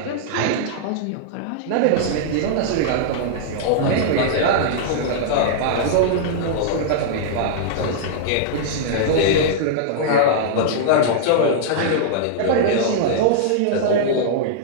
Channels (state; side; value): different; both; correlation -0.01